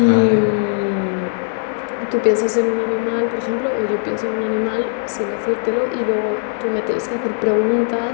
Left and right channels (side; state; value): right; silent; digital silence